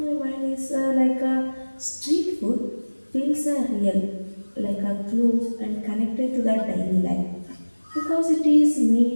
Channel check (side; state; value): both; inverted; correlation -1.00